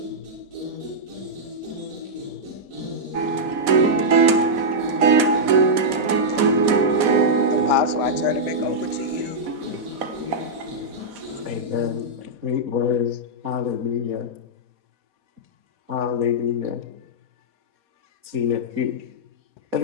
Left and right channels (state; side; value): late; left; 4.0 ms